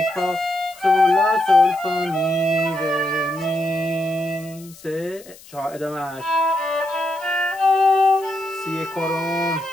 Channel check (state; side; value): noise; left; hiss, 22 dB below the sound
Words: فا سول لا سول فا می ره می 3 4 ادامهش سی کرون